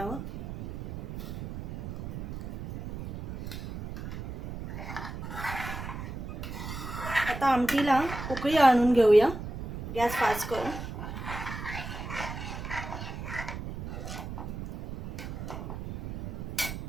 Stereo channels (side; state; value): right; noise; rumble, 7 dB below the sound